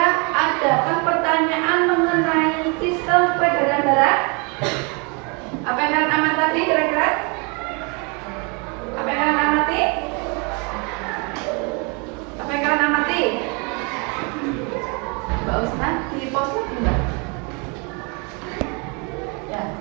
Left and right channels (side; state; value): left; quieter; 32.6 dB